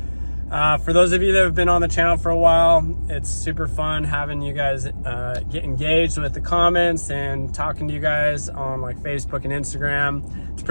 For those of you that have been on the channel for a while, it's super fun having you guys get engaged with the comments and talking to you guys on like Facebook and Instagram. It's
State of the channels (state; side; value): inverted; both; correlation -1.00